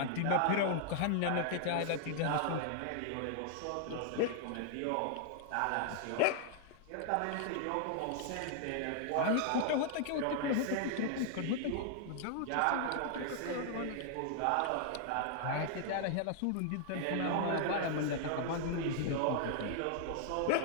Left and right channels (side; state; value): both; different; correlation -0.01